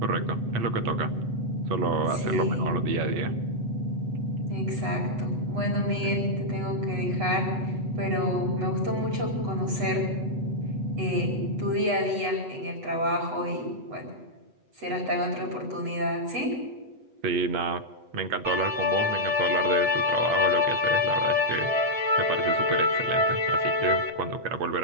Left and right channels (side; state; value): left; late; 8.1 ms